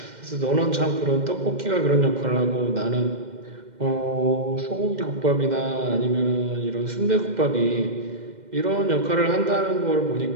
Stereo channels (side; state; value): left; late; 2.1 ms